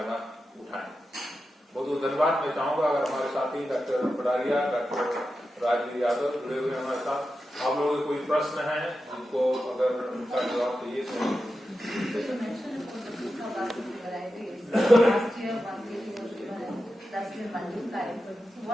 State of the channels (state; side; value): normal; both; correlation 0.91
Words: उठाएं। बहुत बहुत धन्यवाद। मैं चाहूंगा अगर हमारे साथी डॉक्टर पडारिया, डॉक्टर राजवीर यादव जुड़े हुए हमारे साथ, आप लोगों के कोई प्रश्न है उनको अगर उनका जवाब चाहिए तो।